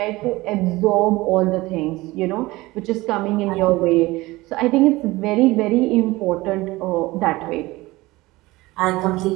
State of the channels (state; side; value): quieter; left; 20.0 dB